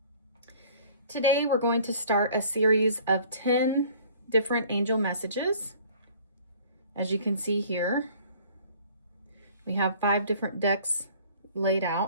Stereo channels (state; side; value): inverted; both; correlation -0.52